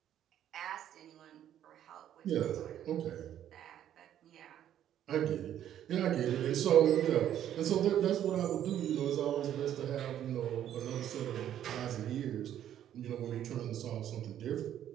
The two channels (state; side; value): quieter; left; 10.8 dB